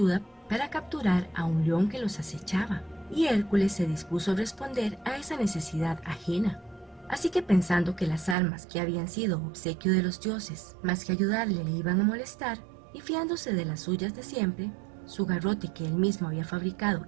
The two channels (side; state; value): left; drops out; at 8.3 s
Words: para capturar a un león que los acechaba, y Hércules se dispuso a responder a esa necesidad ajena. Así que pensando que las armas que habían sido obsequio de los dioses, más que ayudarle, le iban a molestar, y fiándose de las suyas de siempre, su garrote que él mismo había fabricado